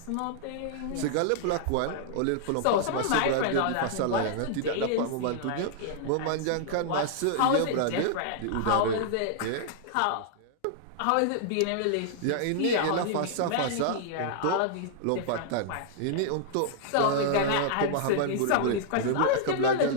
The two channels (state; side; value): different; both; correlation -0.01